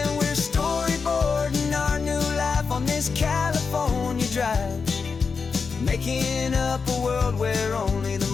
we're storyboarding our new life on this California drive, making up a world where only the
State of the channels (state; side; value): quieter; right; 5.2 dB